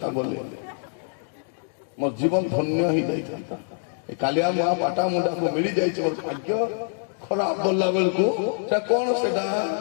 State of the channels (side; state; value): right; silent; 62 dB below the other